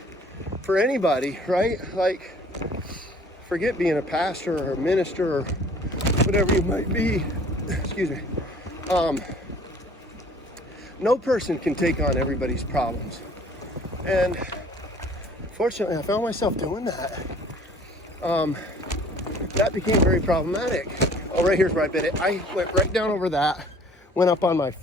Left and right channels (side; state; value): both; normal; correlation 0.53